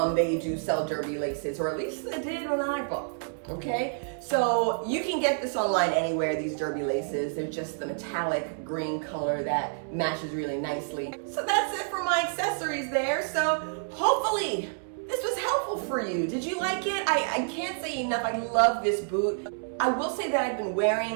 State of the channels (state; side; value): silent; left; 59 dB below the other